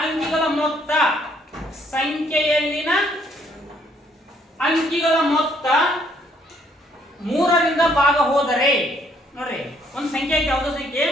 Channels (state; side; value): normal; both; correlation 0.67